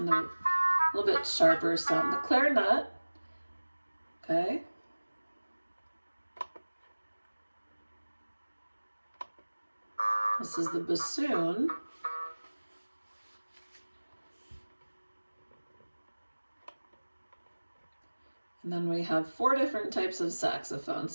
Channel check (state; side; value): inverted; both; correlation -1.00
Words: of a little bit sharper sound. The clarinet, okay. This is the bassoon. And then we have 4 different types of saxophone.